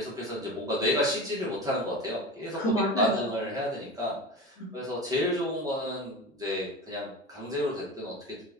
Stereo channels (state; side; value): normal; both; correlation 0.30